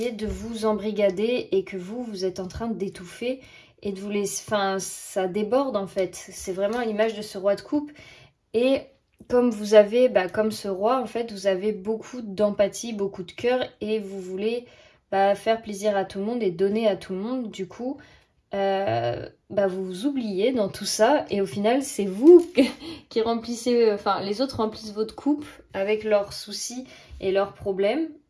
de vous embrigader et que vous êtes en train d'étouffer et de vous laisser, enfin ça déborde en fait, c'est vraiment l'image de ce roi de coupe et comme vous avez, comme ce roi en fait, vous avez beaucoup d'empathie, beaucoup de cœur et vous voulez faire plaisir à tout le monde et donner à tout le monde, du coup vous vous oubliez dans tout ça et au final c'est vous qui remplissez, enfin les autres remplissent votre coupe avec leurs soucis et leurs problèmes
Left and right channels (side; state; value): both; identical; correlation 1.00